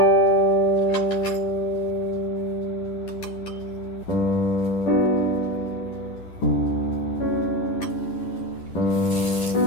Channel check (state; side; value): late; right; 10 ms